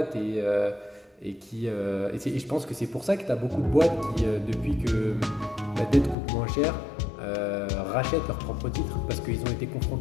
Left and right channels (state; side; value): drops out; right; at 6.2 s